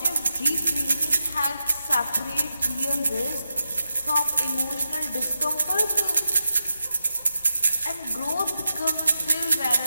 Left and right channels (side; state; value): both; inverted; correlation -0.88